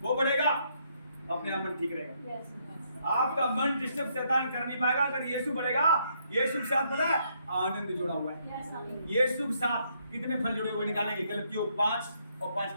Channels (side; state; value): both; inverted; correlation -0.72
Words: वो बढ़ेगा अपने आप मन ठीक रहेगा। आपका मन डिस्टर्ब शैतान कर नहीं पाएगा। अगर यीशु बढ़ेगा, यीशु के साथ पता है आनंद जुड़ा हुआ है। यीशु के साथ कितने फल जुड़े हुए निकालेंगे? गलतियों 5 और 5